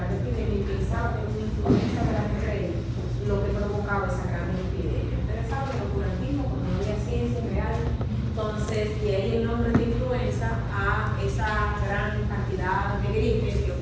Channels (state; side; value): identical; both; correlation 1.00